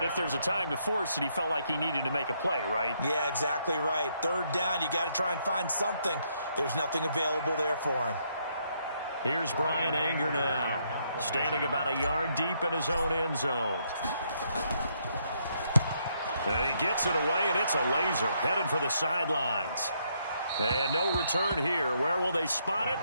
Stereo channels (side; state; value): both; inverted; correlation -0.74